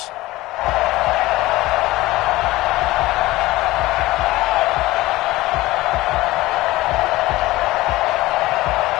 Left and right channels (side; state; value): right; quieter; 18.4 dB